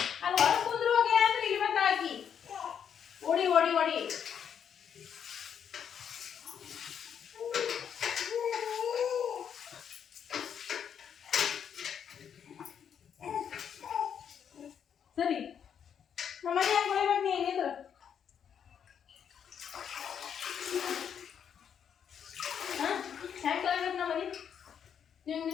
ಅಲ್ಲಿ ಹೊರ ಕುಂದ್ರು ಹೋಗಿ ಅಂದ್ರೆ ಇಲ್ಲಿ ಬಂದ ಹಾಕಿ ಓಡಿ ಓಡಿ ಓಡಿ ಸರಿ ನಮ್ಮನೆ ಹೆಂಗ್ ಕೊಯ್ಬೇಕು ನೀ ಏನಿದ್ರು ಹೆಂಗ್ ಕೊಯ್ಬೇಕು ನಮ್ಮನೆ ನೀವು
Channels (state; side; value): quieter; right; 8.1 dB